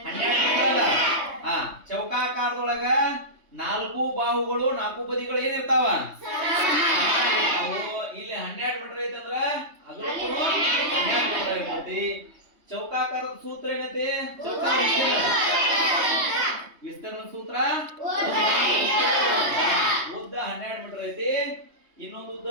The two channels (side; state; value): left; late; 3.2 ms